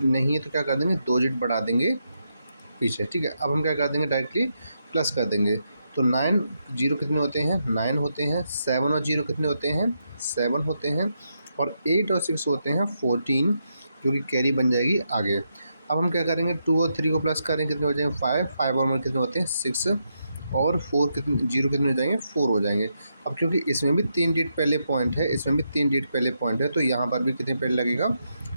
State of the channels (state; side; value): inverted; both; correlation -0.82